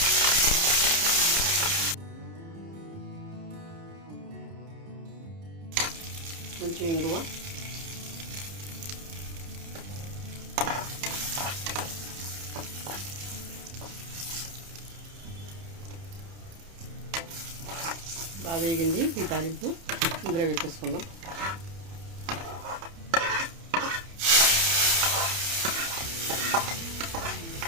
కొంచెం ఇంగువ, బాగా వేగింది. ఈ తాలింపు ఇందులో వేసేసుకుందాం.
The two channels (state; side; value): late; left; 30 ms